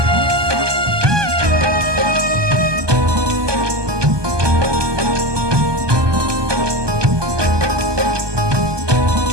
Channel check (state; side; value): late; left; 1.2 ms